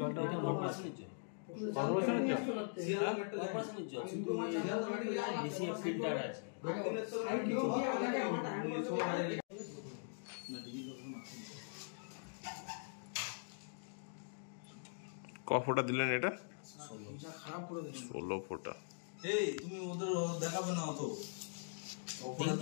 এটা কর্পোরেশনের জল। কর্পোরেশনের জল কর্পোরেশনের জল, কিন্তু বেশি ফিল্টার আছে। ক ফোঁটা দিলেন এটা? 16 ফোঁটা। এই তুমি ওদের দেখাবে না অত, ওরা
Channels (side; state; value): right; silent; digital silence